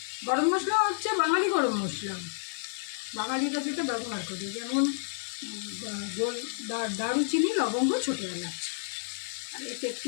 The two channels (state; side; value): silent; right; digital silence